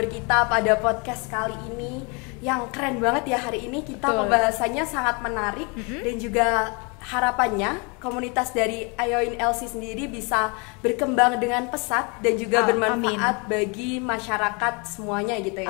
kita pada podcast kali ini yang keren banget ya. Hari ini kita pembahasannya sangat menarik dan juga harapannya komunitas dari Ayoin LC sendiri bisa berkembang dengan pesat dan juga bermanfaat bagi masyarakat semuanya gitu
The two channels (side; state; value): right; quieter; 31.8 dB